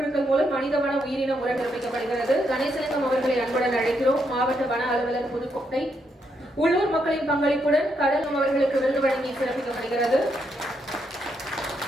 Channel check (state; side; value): normal; both; correlation 0.78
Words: மூலம் மனித வன உயிரின முறை நிரூபிக்கப்படுகிறது. கணேசலிங்கம் அவர்களை அன்புடன் அழைக்கிறோம். மாவட்ட வன அலுவலர் புதுக்கோட்டை. உள்ளூர் மக்களின் பங்களிப்புடன் கடலும் அவர்களுக்கு விருது வழங்கி சிறப்பிக்கப்படுகிறது.